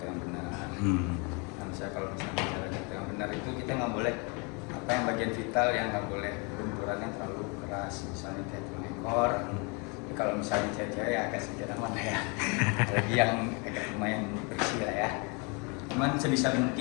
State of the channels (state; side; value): quieter; right; 32.6 dB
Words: yang benar. Nah, misalnya kalau misalnya cara jatuh yang benar itu kita nggak boleh apa yang bagian vital yang nggak boleh benturannya terlalu keras, misalnya kayak tulang ekor. Kalau misalnya cewek-cewek ya agak sedikit aman lah ya. Lagi yang agak lumayan bersih lah ya. Cuman sebisa